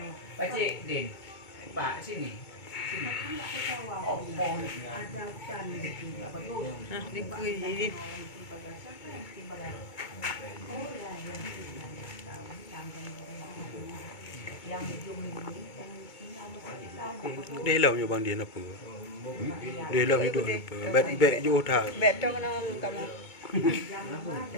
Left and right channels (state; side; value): late; right; 2.2 ms